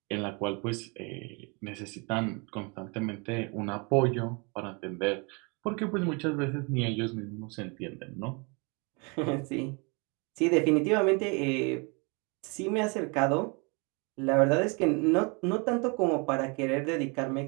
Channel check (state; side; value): quieter; left; 31.8 dB